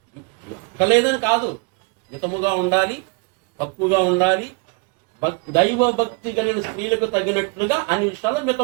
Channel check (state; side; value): quieter; left; 31.7 dB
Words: లేదని కాదు. మితముగా ఉండాలి, తక్కువగా ఉండాలి, దైవ భక్తి కలిగిన స్త్రీలకు తగినట్లుగా అన్ని విషయాల్లో